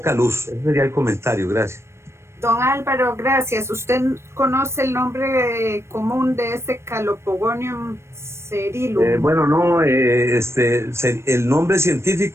luz. Ese sería el comentario. Gracias. Don Álvaro, gracias. ¿Usted conoce el nombre común de ese Calopogonium cerilum? Bueno, no, el nombre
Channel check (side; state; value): left; late; 0.13 ms